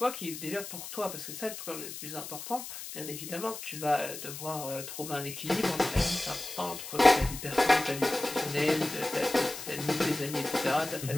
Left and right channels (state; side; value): noise; left; hiss, 10 dB below the sound